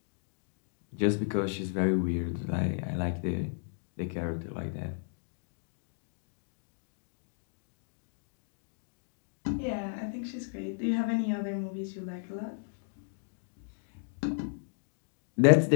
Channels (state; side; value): silent; right; digital silence